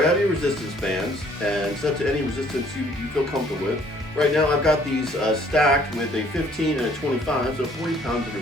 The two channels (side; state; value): both; normal; correlation 0.60